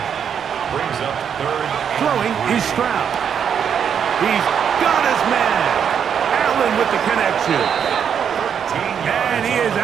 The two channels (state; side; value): quieter; left; 7.8 dB